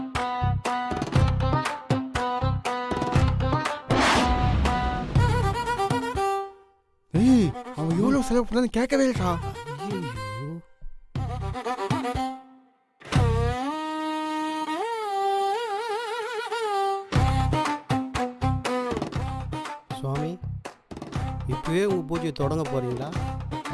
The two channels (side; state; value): both; identical; correlation 1.00